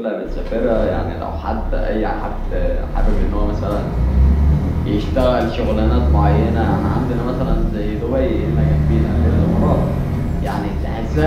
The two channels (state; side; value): identical; both; correlation 1.00